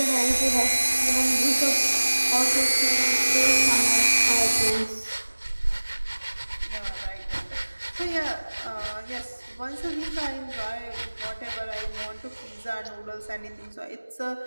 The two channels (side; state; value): both; inverted; correlation -1.00